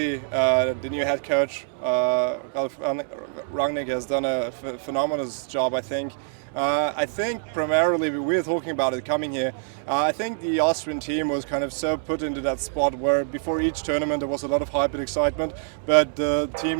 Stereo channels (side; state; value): left; silent; 62 dB below the other